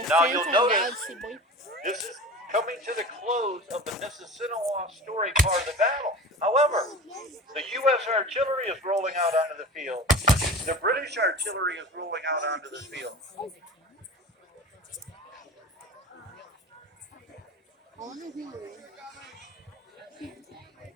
Now you'll notice this is coming to the close of the Mississinewa story part of the battle. However, the U.S. artillery is rolling out onto the field. The British artillery is rolling out onto the field.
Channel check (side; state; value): both; normal; correlation 0.34